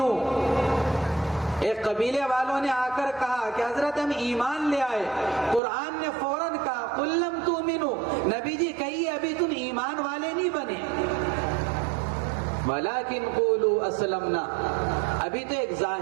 ایک قبیلے والوں نے آ کر کہا کہ حضرت ہم ایمان لے آئے، قرآن نے فوراً کہا قل لم تؤمنوا، نبی جی کہیے ابھی تم ایمان والے نہیں بنے، ولیکن قولوا اسلمنا، ابھی تو ایک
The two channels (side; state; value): left; drops out; at 5.6 s